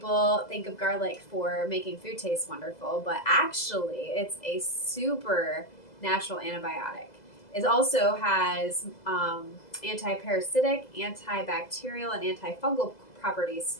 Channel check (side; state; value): right; late; 2.0 ms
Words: think of garlic for making food taste wonderful, but actually it's a super natural antibiotic. It also has anti-parasitic, antibacterial, and antifungal properties